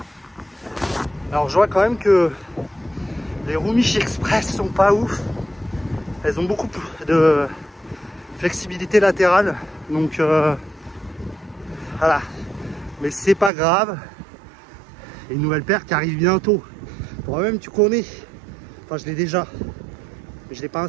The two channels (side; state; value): left; drops out; at 13.5 s